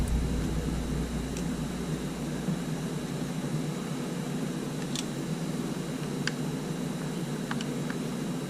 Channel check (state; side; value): identical; both; correlation 1.00